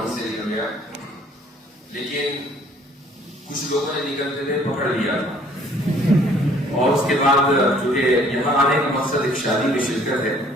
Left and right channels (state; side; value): normal; both; correlation 0.58